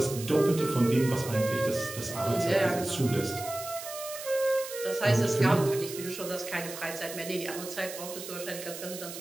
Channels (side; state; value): right; noise; hiss, 10 dB below the sound